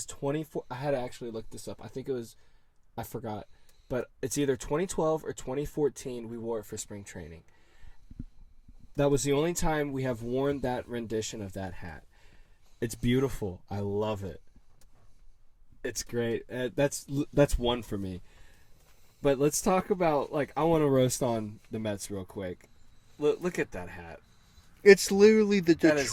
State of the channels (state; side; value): identical; both; correlation 1.00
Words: 24. I had to actually look this up. I forgot. But it's either 2012 or 2014 we wore it for spring training. That was the only time we have worn that rendition of that hat. It's beautiful. I love it. It's great. That's one for me. But let's talk about, I want to roast on the Mets real quick. Look at that hat. It's literally the That is